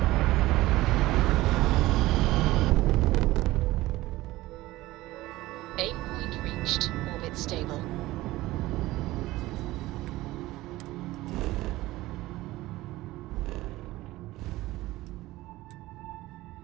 Aim point reached. Orbit stable.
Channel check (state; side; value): quieter; left; 17.8 dB